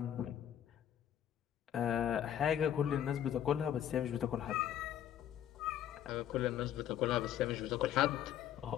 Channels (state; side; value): quieter; right; 10.5 dB